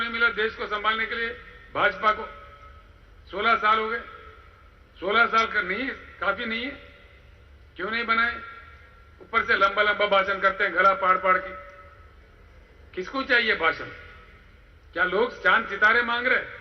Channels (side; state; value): both; identical; correlation 1.00